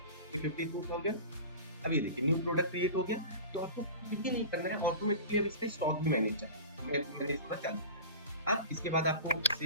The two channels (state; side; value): inverted; both; correlation -0.35